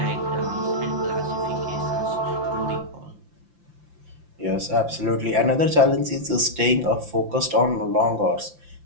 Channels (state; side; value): late; left; 5.8 ms